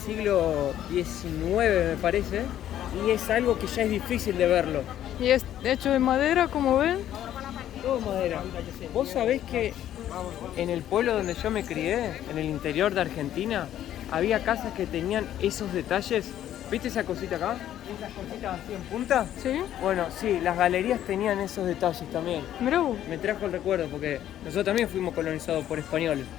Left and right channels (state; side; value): quieter; right; 11.6 dB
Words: XIX, me parece, y es algo que ya es difícil de verlo. Y es hecho de madera, como ven. Todo madera. Vos sabés que en el pueblo donde yo me crié, en el interior de Argentina, había casas que tenían esos detalles. ¿Viste esa cosita acá? Esas cositas así en punta. Sí, Bueno, sí, las galerías tenían esos detalles también. mirá vos. Me trajo el recuerdo porque nosotros también fuimos colonizados por españoles.